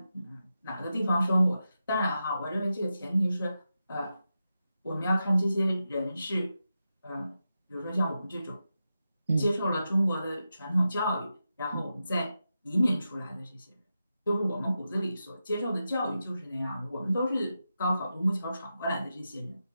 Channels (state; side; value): inverted; both; correlation -0.89